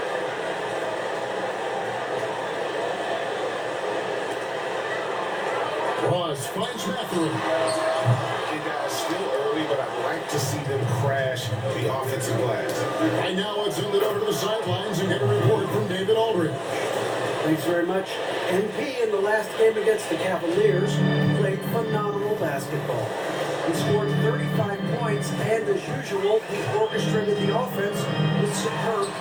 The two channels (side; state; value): both; identical; correlation 1.00